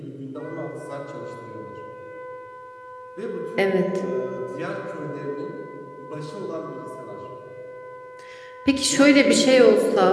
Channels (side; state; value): both; identical; correlation 1.00